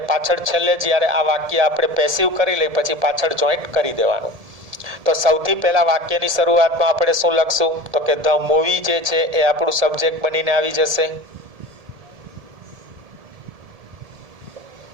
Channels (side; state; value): left; late; 1.7 ms